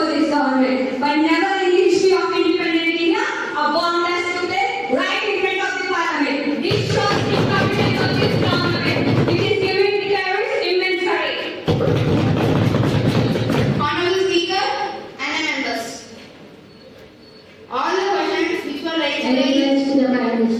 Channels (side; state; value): both; identical; correlation 1.00